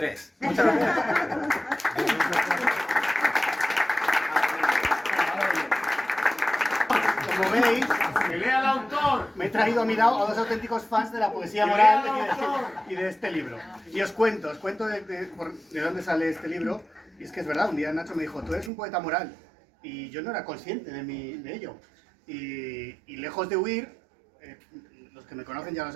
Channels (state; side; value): drops out; left; at 18.7 s